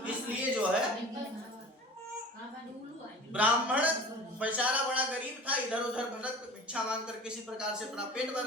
इसलिए जो है ब्राह्मण बेचारा बड़ा गरीब था, इधर उधर भटक भिक्षा मांगकर किसी प्रकार से अपना पेट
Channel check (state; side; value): normal; both; correlation 0.40